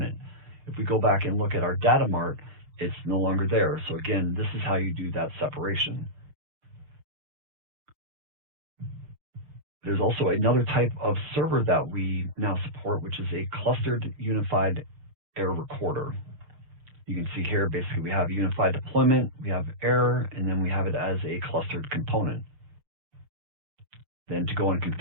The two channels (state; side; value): late; left; 6.5 ms